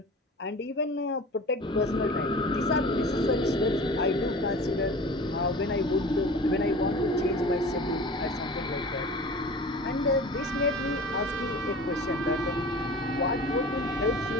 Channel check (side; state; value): both; normal; correlation 0.39